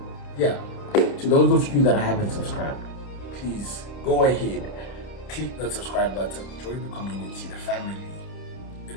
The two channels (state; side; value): late; right; 29 ms